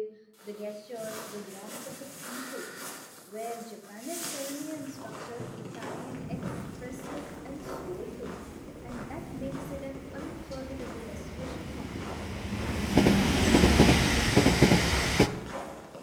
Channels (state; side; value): identical; both; correlation 1.00